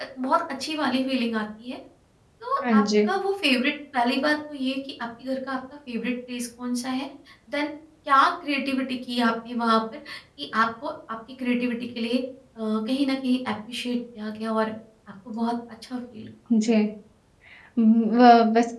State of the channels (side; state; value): both; identical; correlation 1.00